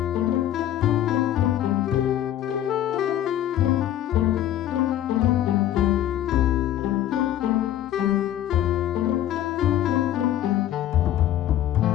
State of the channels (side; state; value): right; quieter; 12.1 dB